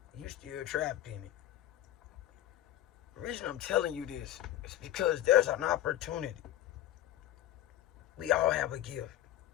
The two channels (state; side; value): quieter; right; 13.1 dB